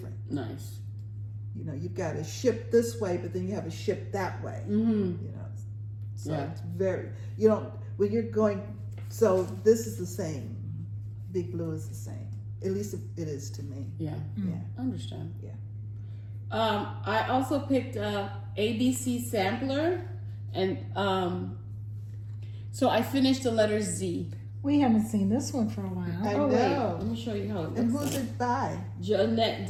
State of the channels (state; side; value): identical; both; correlation 1.00